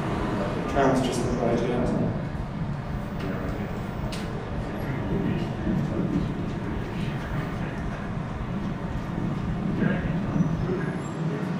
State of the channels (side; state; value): both; identical; correlation 1.00